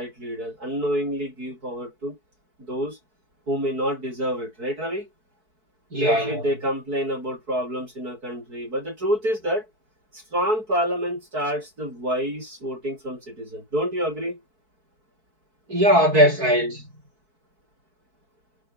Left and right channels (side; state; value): left; late; 4.6 ms